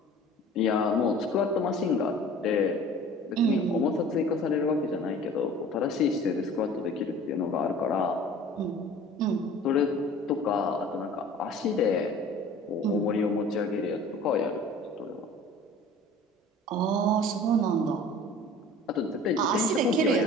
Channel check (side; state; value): both; normal; correlation 0.44